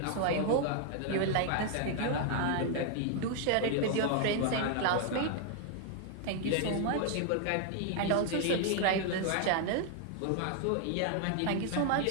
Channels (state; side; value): different; both; correlation 0.00